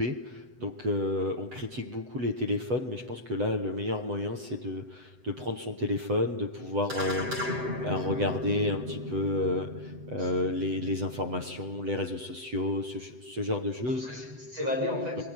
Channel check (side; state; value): left; late; 8.0 ms